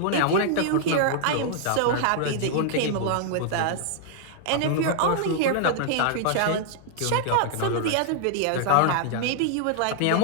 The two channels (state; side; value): different; both; correlation -0.01